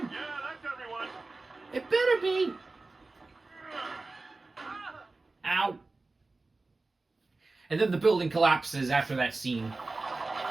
Yeah, that's everyone. It better be. Ow. And then the building collapses after that scene.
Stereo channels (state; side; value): quieter; left; 3.4 dB